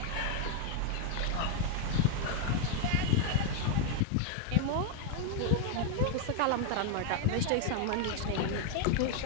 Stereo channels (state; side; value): different; both; correlation 0.00